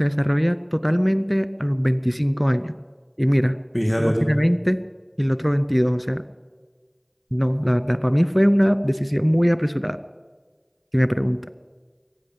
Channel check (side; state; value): both; identical; correlation 1.00